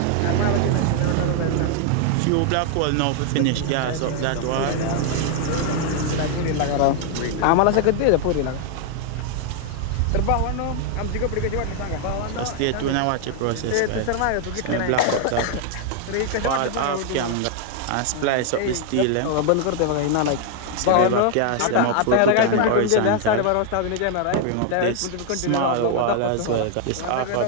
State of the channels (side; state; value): both; different; correlation 0.00